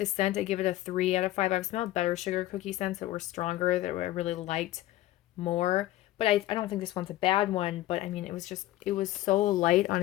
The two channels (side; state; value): right; quieter; 15.4 dB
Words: scent, I give it a 3 out of 5. I've smelled better sugar cookie scents that were stronger, that I really liked more. But I don't think this one's a bad one, but I mean, it was so light on